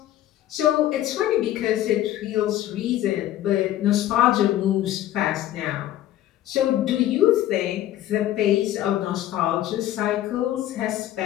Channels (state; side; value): quieter; right; 13.3 dB